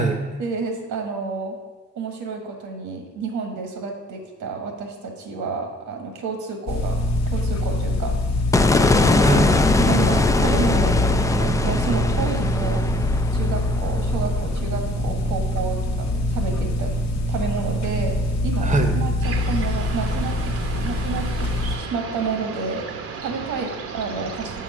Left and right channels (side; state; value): both; normal; correlation 0.57